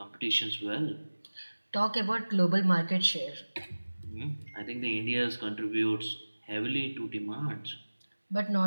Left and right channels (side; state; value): both; inverted; correlation -1.00